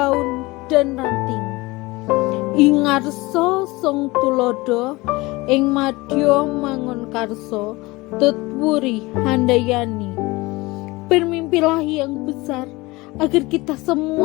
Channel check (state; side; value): quieter; right; 22.0 dB